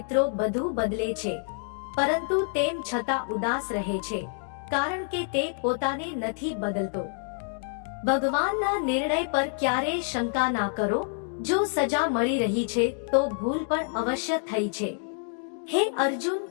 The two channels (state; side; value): silent; right; 60 dB below the other